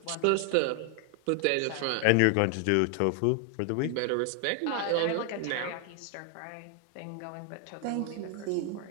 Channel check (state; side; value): different; both; correlation 0.00